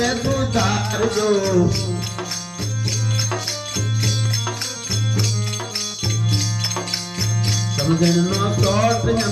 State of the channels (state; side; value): identical; both; correlation 1.00